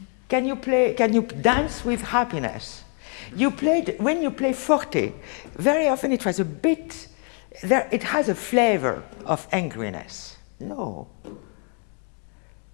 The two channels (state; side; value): quieter; right; 39.7 dB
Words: Can you dance with happiness? When you play forte, very often it was a bit, it has a flavor of angriness. No.